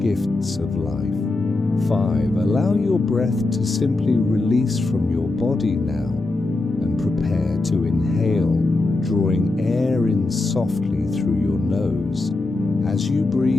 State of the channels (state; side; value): quieter; right; 3.1 dB